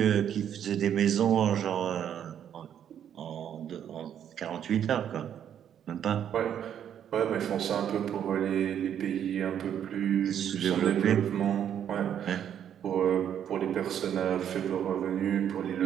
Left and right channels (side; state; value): left; quieter; 9.4 dB